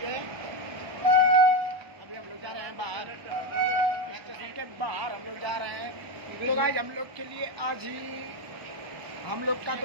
है। अभी हम लोग जा रहे हैं बाहर, स्टेशन के बाहर हम लोग जा रहे हैं। तो गाइस हम लोग के लिए आज ही हम लोग का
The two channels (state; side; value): late; left; 1.1 ms